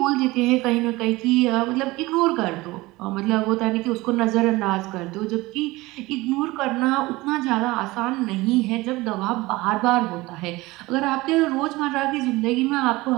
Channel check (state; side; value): quieter; left; 20.5 dB